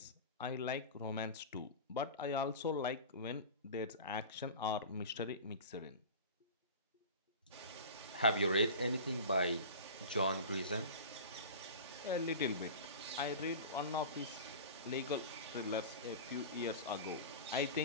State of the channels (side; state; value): both; inverted; correlation -0.34